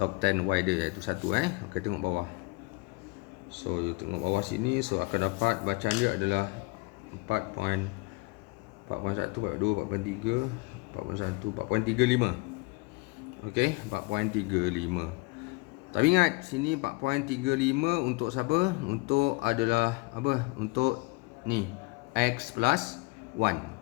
10y dia iaitu 1. Okay, tengok bawah. So you tengok bawah sini. So akan dapat bacaan dia adalah 4.1, 4.2, 4.3, 4.1, 4.35. Okay, 4.35. Tapi ingat sini 4.35 untuk siapa? Untuk adalah apa? Untuk ni x plus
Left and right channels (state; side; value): quieter; right; 26.2 dB